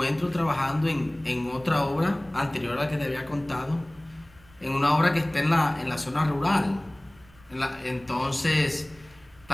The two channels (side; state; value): right; noise; rumble, 27 dB below the sound